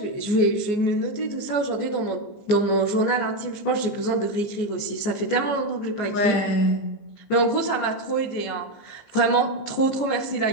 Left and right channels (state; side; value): late; right; 14 ms